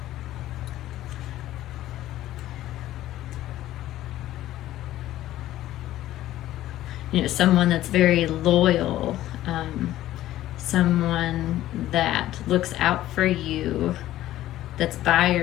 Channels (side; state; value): right; quieter; 14.2 dB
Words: you know, someone that's very loyal, someone that looks out for you, that's by